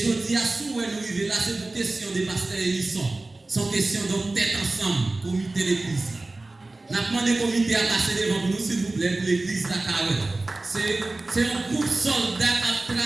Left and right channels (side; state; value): left; quieter; 3.1 dB